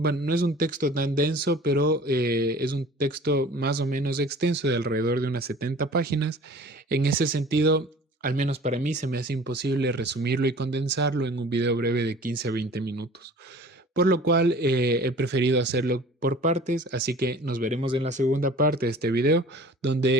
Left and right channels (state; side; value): normal; both; correlation 0.45